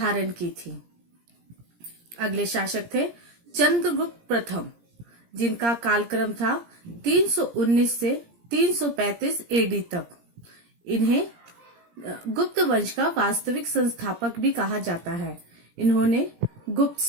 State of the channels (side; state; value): left; late; 17 ms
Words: की थी। अगले शासक थे चंद्रगुप्त प्रथम, जिनका कालक्रम था 319 से 335 एडी तक। इन्हें गुप्त वंश का वास्तविक संस्थापक भी कहा जाता है। इन्होंने गुप्त